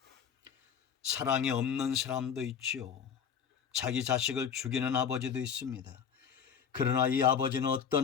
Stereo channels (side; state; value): right; quieter; 7.4 dB